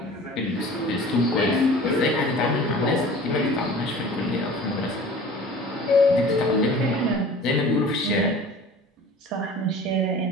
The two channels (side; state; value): both; normal; correlation 0.43